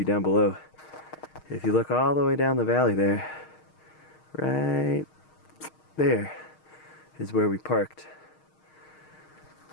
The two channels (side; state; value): right; late; 6.4 ms